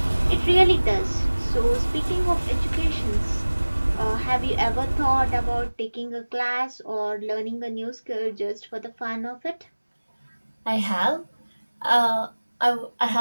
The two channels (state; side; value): inverted; both; correlation -1.00